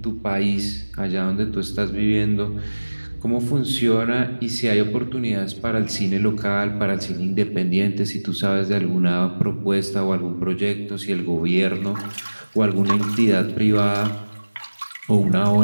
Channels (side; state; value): both; inverted; correlation -1.00